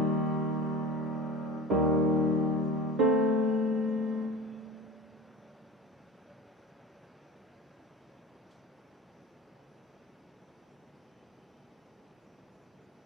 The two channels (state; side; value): normal; both; correlation 0.33